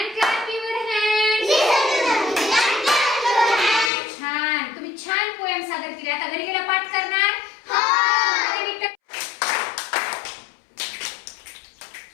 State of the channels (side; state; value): right; drops out; at 3.9 s